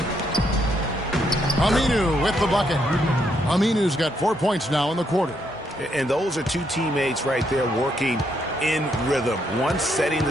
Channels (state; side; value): normal; both; correlation 0.75